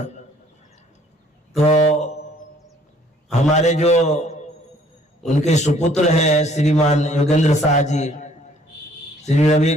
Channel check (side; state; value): both; normal; correlation 0.60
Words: तो हमारे जो उनके सुपुत्र हैं श्रीमान योगेंद्र शाह जी, श्री